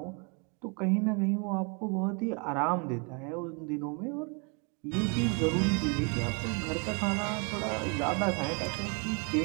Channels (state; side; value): quieter; left; 35.0 dB